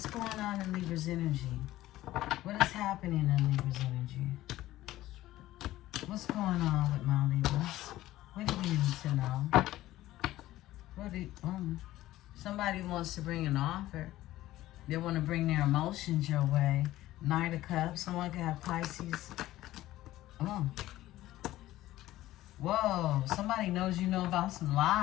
going on in Libra's energy? What is happening in Libra's energy? What's going on with my Libras? What do you need to know? Somebody wants to bring an offer. They want to bring their emotions your way. Knight of Cups. Someone could have Pisces. Whoa. Somebody knows you know about some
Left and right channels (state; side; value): quieter; right; 15.5 dB